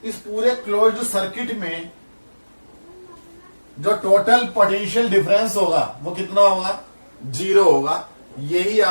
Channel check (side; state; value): both; inverted; correlation -1.00